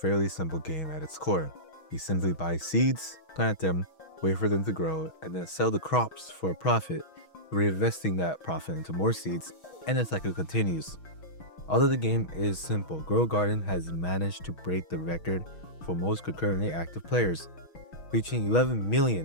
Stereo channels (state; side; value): late; right; 6.3 ms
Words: simple game at its core. You simply buy seeds, plant them, wait for them to grow, and then sell the crops for a profit, reinvesting that profit into more seeds, and the cycle continues. Although the game is simple, Grow a Garden has managed to break the record for most concurrently active players, reaching 11